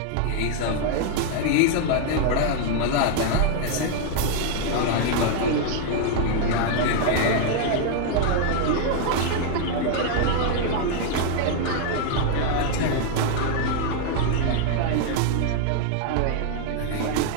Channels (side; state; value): both; different; correlation 0.00